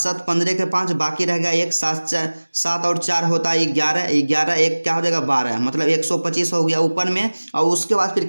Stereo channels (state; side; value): inverted; both; correlation -1.00